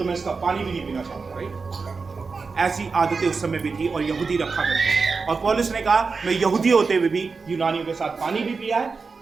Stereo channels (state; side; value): quieter; left; 4.6 dB